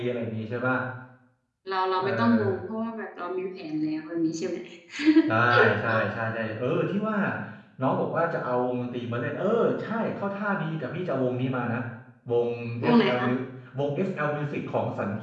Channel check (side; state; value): both; identical; correlation 1.00